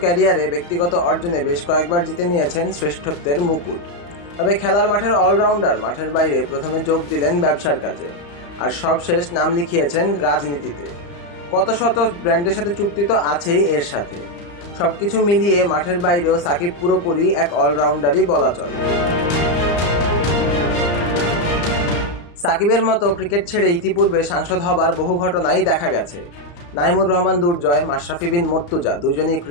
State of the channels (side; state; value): right; late; 35 ms